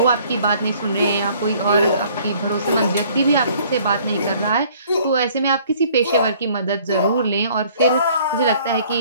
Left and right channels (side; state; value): both; inverted; correlation -0.57